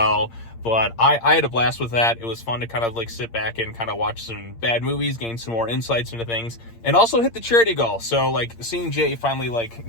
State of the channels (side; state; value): right; late; 8.7 ms